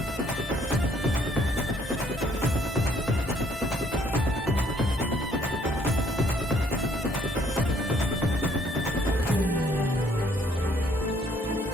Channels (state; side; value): normal; both; correlation 0.64